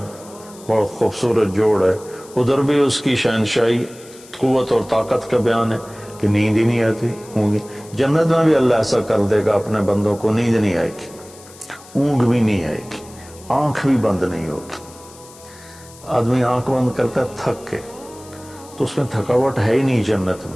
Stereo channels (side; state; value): left; noise; hiss, 21 dB below the sound